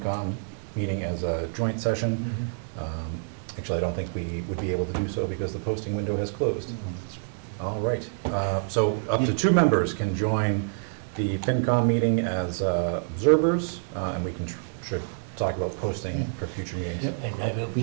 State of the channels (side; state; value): left; silent; digital silence